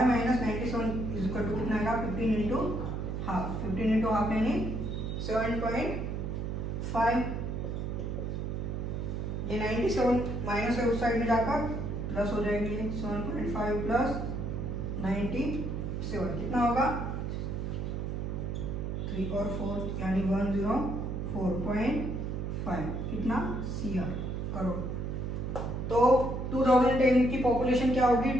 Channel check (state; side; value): noise; right; hum, 3 dB below the sound